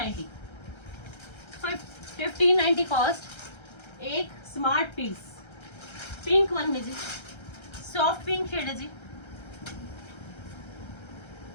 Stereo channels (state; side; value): late; right; 1.3 ms